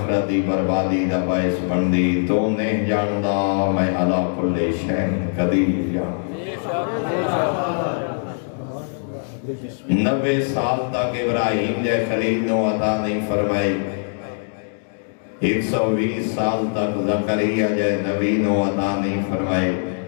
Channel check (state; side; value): silent; right; digital silence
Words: دی بربادی دا باعث بن دی، تو نہیں جاندہ میں علا کل شین قدیر جان۔ 90 سال تک ابراہیم جے خلیل نو عطا نہیں فرمائی، 120 سال تک زکریا جے نبی نو عطا نہیں فرمائی،